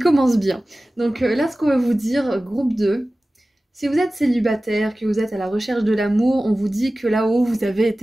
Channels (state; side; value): normal; both; correlation 0.96